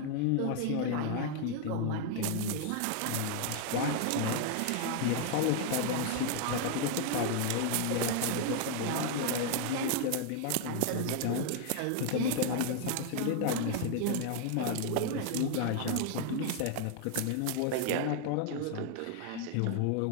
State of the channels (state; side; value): different; both; correlation 0.00